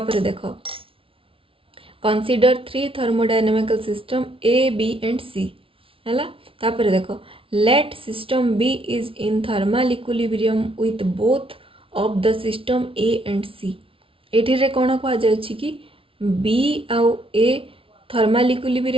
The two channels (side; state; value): left; late; 0.26 ms